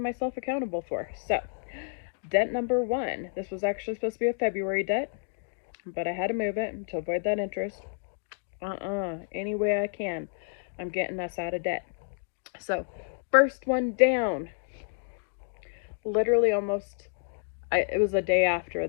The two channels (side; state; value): right; silent; digital silence